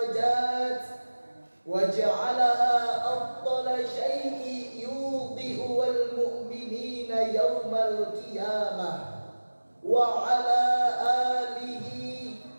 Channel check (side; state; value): both; inverted; correlation -1.00